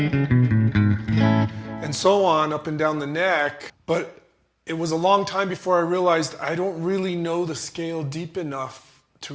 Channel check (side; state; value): both; identical; correlation 1.00